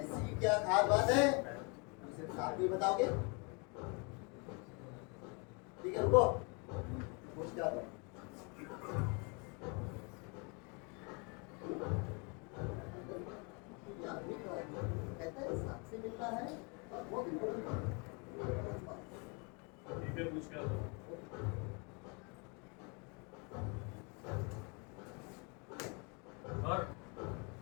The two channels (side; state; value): right; quieter; 32.8 dB